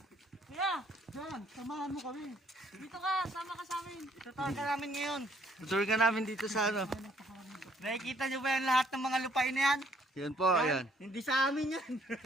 Kuya, John, samahan mo kami. dito ka, sama ka sa amin. Tutuwa ka namin ngayon. Tutur ka namin dito sa ano. Nakikita nyo ba yan lahat ng mga lupain na yan? Yan po, ayan. Hindi sa amin yan.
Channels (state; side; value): normal; both; correlation 0.65